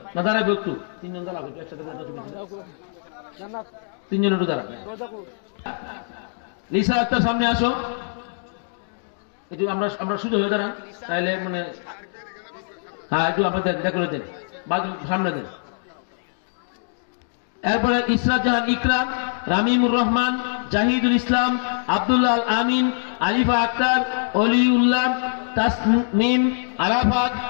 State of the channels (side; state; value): right; silent; digital silence